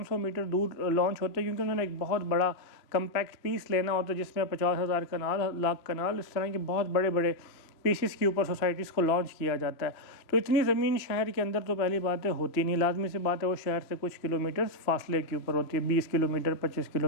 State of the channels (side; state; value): right; late; 2.9 ms